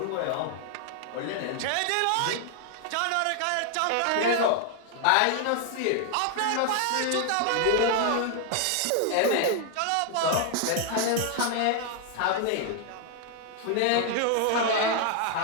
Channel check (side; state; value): both; different; correlation 0.00